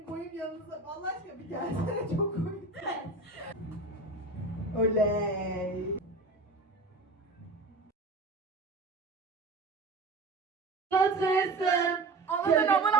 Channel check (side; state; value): left; quieter; 3.2 dB